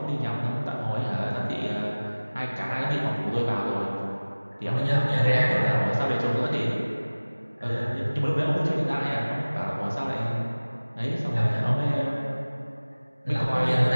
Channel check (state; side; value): inverted; both; correlation -1.00